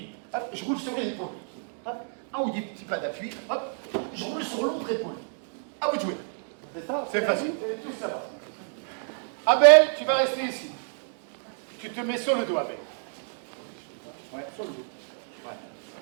Hop, je roule sur les épaules. Hop, un ou deux petits pas d'appui. Hop, je roule sur l'autre épaule. À vous de jouer. C'est ça. C'est facile. Vous allez tous là-bas. Abel, tu vas rester ici. Tu te mets sur le dos, Abel. Ouais, sur le dos. Ouais.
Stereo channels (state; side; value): silent; left; 59 dB below the other